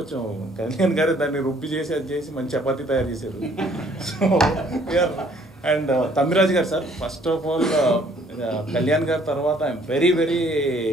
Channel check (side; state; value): both; normal; correlation 0.61